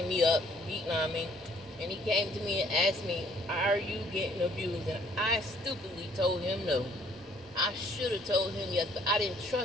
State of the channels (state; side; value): normal; both; correlation 0.62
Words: me up, beating on me. And he came to me and asked me, are you getting abused? And I stupidly told him no. I should have told him yes, but I didn't